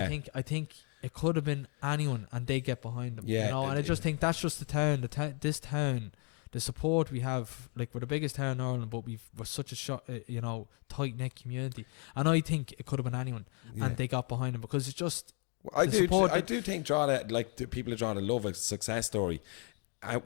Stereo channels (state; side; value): quieter; right; 38.7 dB